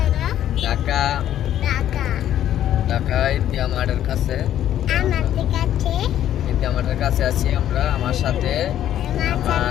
ঢাকা ঢাকা ইন্ডিয়া মার্টের কাছে। ইন্ডিয়া মার্টের কাছে আছি আমরা। আমার সাথে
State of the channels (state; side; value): quieter; right; 11.4 dB